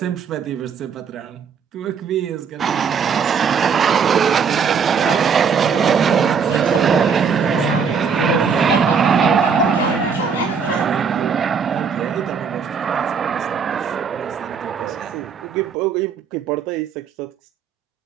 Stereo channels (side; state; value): left; quieter; 6.2 dB